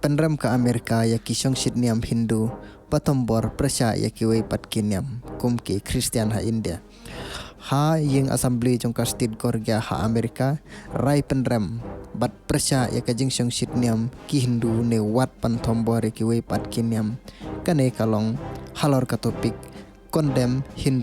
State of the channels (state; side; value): identical; both; correlation 1.00